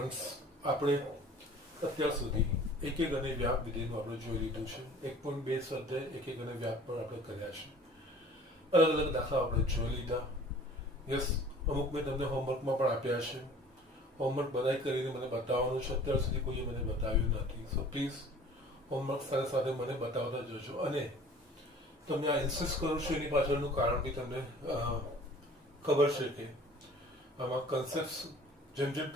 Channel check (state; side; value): normal; both; correlation 0.48